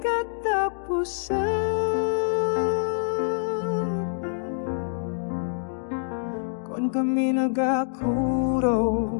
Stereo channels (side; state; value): right; silent; digital silence